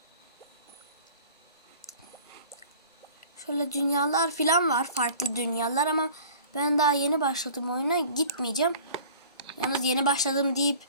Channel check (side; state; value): both; inverted; correlation -0.46